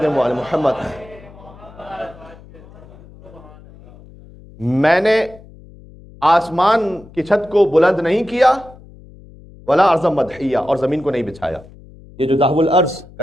وعلى محمد. میں نے آسمان کی چھت کو بلند نہیں کیا ولا ارض مدحیہ, اور زمین کو نہیں بچھایا. یہ جو دحو الارض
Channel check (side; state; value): left; noise; hum, 21 dB below the sound